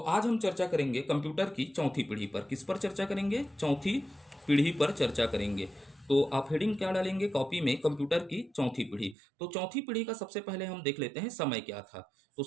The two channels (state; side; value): drops out; left; at 9.2 s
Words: हम चर्चा करेंगे कंप्यूटर की चौथी पीढ़ी पर। किस पर चर्चा करेंगे? चौथी पीढ़ी पर चर्चा करेंगे। तो आप हेडिंग क्या डालेंगे कॉपी में? कंप्यूटर की चौथी पीढ़ी। तो चौथी पीढ़ी का सबसे पहले हम देख लेते हैं समय क्या था। तो